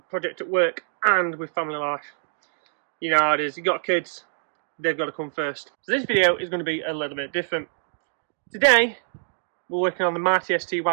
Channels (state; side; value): silent; left; digital silence